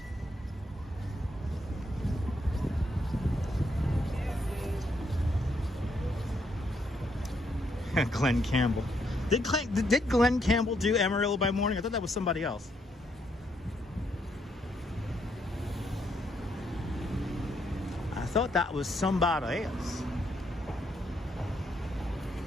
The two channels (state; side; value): normal; both; correlation 0.75